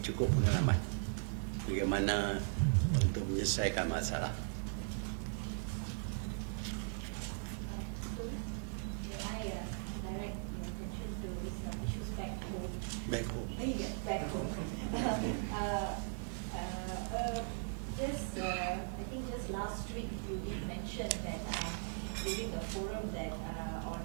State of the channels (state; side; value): silent; left; digital silence